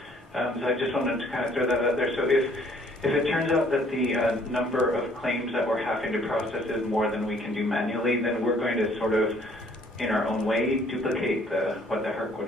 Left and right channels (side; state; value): both; normal; correlation 0.60